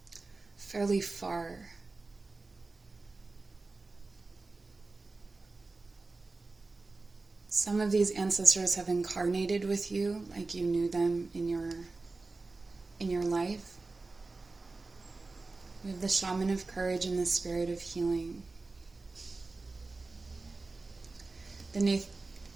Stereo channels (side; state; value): left; quieter; 3.6 dB